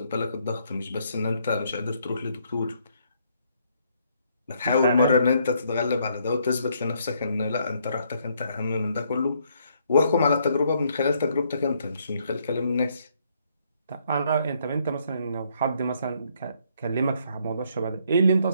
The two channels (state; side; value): inverted; both; correlation -0.70